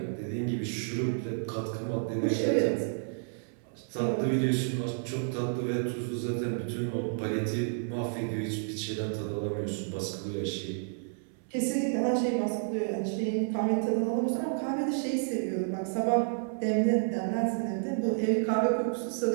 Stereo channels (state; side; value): silent; left; 57 dB below the other